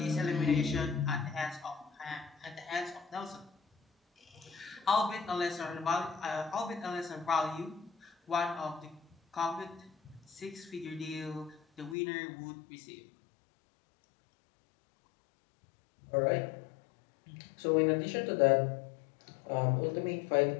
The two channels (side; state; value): right; drops out; at 12.0 s